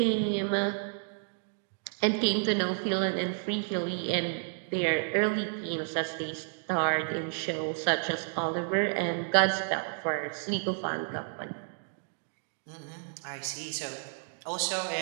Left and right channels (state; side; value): silent; left; digital silence